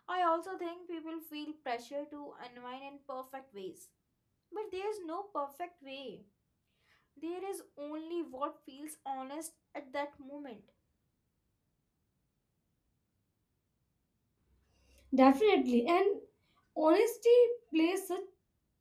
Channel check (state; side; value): identical; both; correlation 1.00